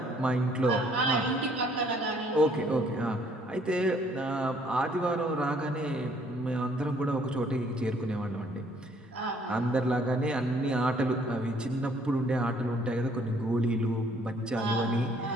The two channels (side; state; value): both; normal; correlation 0.63